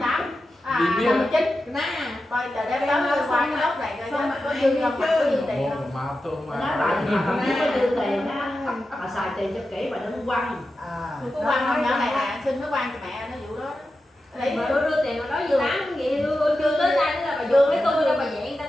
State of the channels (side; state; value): both; normal; correlation 0.91